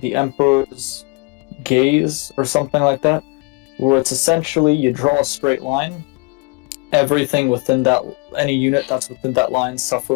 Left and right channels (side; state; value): right; quieter; 29.4 dB